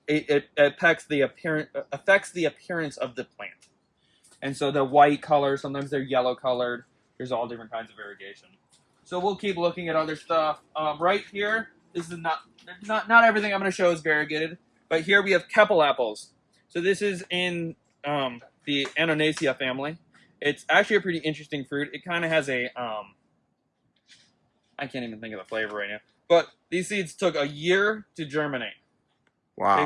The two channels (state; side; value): identical; both; correlation 1.00